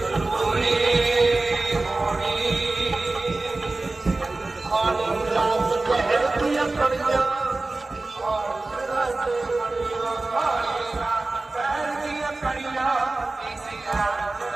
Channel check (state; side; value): quieter; left; 3.2 dB